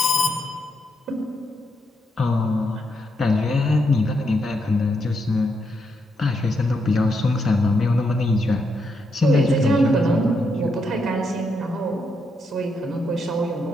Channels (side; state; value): both; normal; correlation 0.80